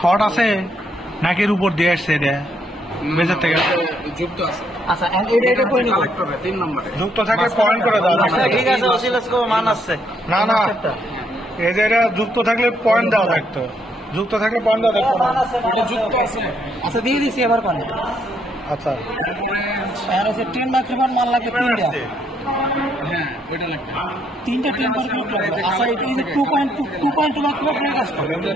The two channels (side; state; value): both; normal; correlation 0.72